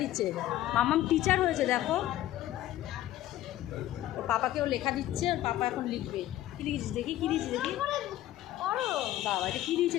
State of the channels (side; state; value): right; quieter; 14.1 dB